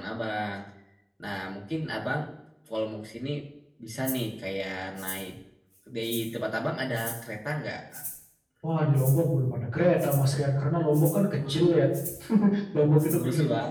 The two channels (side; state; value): both; identical; correlation 1.00